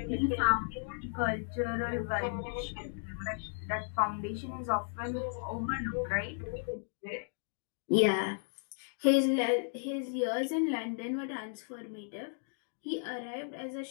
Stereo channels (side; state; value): right; silent; digital silence